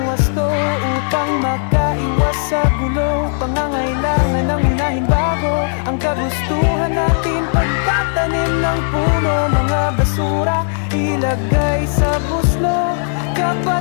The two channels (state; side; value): silent; right; 63 dB below the other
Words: wasto upang makaiwas sa gulo. Pangangailangan ng unahin bago ang kagustuhan natin. Pagtatanim ng puno, mga basura ilagay sa buslo.